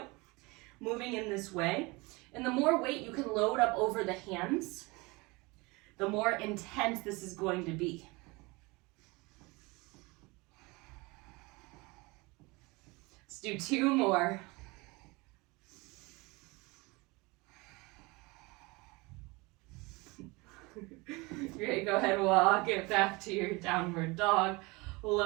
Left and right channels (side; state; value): left; quieter; 25.0 dB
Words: moving in this way. And the more weight you can load up over the hands, the more intense this is going to be. Let's do 2 more. Great, go ahead, walk it back to your downward dog.